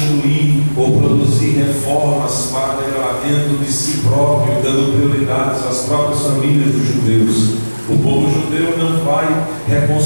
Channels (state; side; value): inverted; both; correlation -1.00